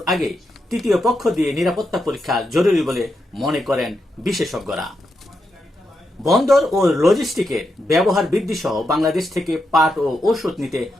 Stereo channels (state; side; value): normal; both; correlation 0.84